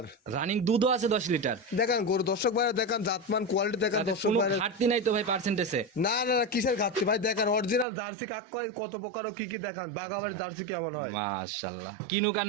রানিং দুধও আছে 10 লিটার। দেখান গরু দর্শক ভাইরা, দেখান জাতমান কোয়ালিটি দেখান তাতে দর্শক কোনো ভাইরা। ঘাটতি নাই তো ভাই পার্সেন্টেজে? না না না, কিসের ঘাটতি ভাই, দেখান অরিজিনাল জার্সি কাক কয়, কত প্রকার ও কি কি দেখান, বাগাবাড়ির জার্সি কেমন হয়। মাশাআল্লাহ, কিনুক আর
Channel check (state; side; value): drops out; left; at 7.9 s